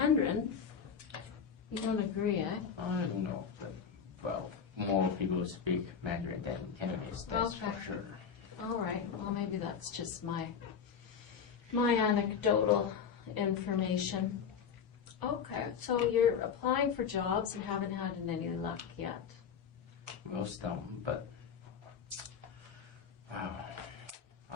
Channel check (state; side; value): quieter; right; 6.9 dB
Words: You don't agree, eh? I don't know, but, well, more people speak Mandarin than Cantonese, that's Okay. for sure. All right. Well, maybe that's just my anecdotal information. Okay, so you're applying for jobs and haven't had any luck yet. Well, some, but